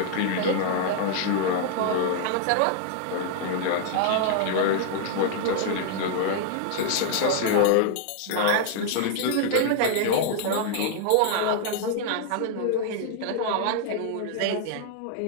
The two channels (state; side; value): different; both; correlation 0.00